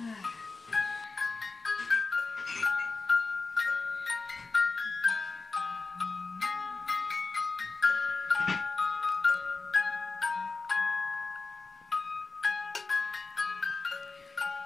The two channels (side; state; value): right; quieter; 4.0 dB